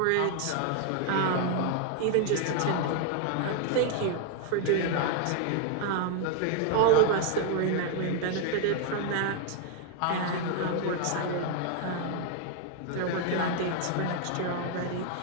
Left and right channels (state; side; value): different; both; correlation 0.00